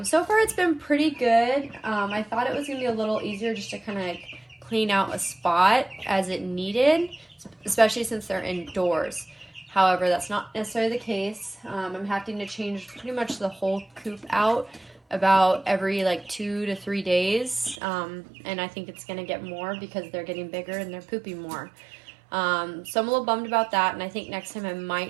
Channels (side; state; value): left; drops out; at 17.8 s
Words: so far it's been pretty good. I thought it was going to be a little easier just to kind of clean out a spot as it needed, especially since they're indoors. However, that's not necessarily the case. I'm having to change pretty much the whole coop out about every like 2 to 3 days, and I think it's going to get more because they're getting bigger and they're pooping more. So I'm a little bummed about that, and I think next time I